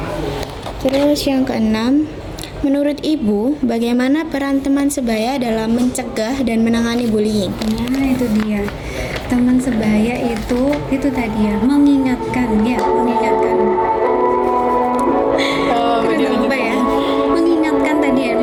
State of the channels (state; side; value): identical; both; correlation 1.00